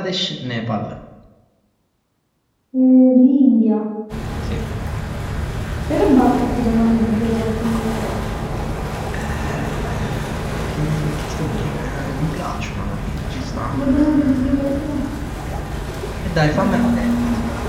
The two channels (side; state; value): both; identical; correlation 1.00